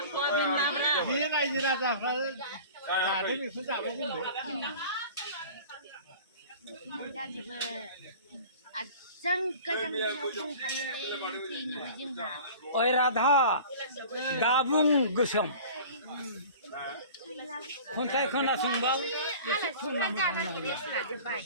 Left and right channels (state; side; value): inverted; both; correlation -0.42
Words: बे रायजो राजाफ्रा जादों बेखौ जाबाय जोंबो जाजोबो आजां गाजां दंखायोलै फैनोबो जोंहा ओइ राधा दाबुं गोसोम खन्थाइ खोनासंबा एसे जानानै रेस्ट लाजोब्बाय